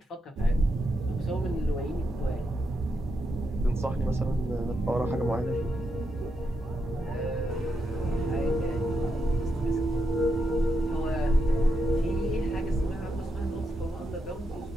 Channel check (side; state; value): both; normal; correlation 0.83